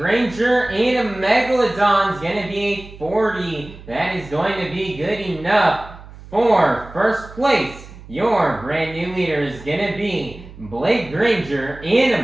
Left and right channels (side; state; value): right; noise; hum, 18 dB below the sound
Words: and a Megalodon is going to be a 40. That is going to be good enough for first place. Your brand new leader is going to be Granger and a